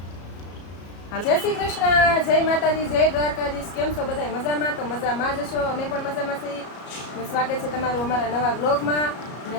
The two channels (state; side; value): late; right; 34 ms